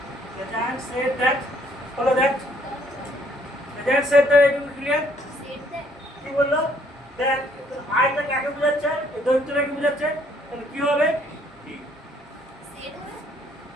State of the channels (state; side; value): normal; both; correlation 0.64